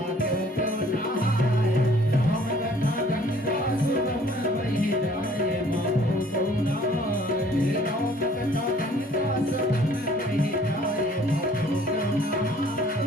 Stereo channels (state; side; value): normal; both; correlation 0.57